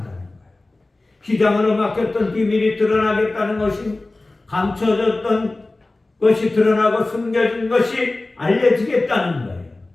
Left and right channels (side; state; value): right; quieter; 3.0 dB